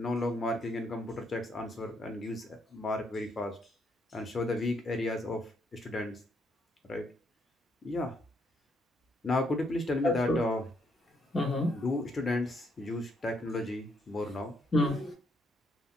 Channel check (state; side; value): normal; both; correlation 0.73